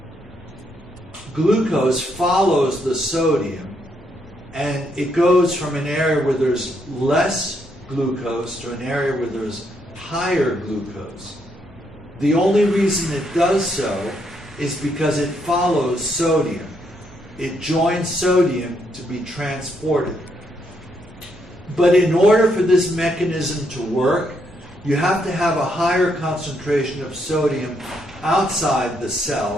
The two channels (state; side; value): normal; both; correlation 0.75